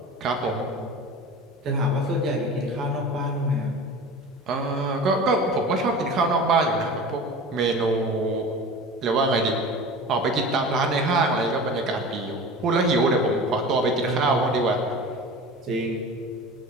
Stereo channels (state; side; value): normal; both; correlation 0.36